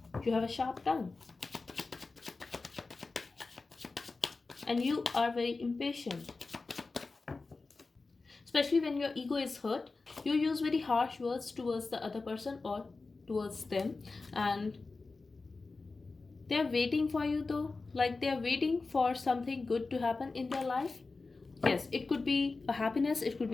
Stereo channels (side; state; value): right; quieter; 3.8 dB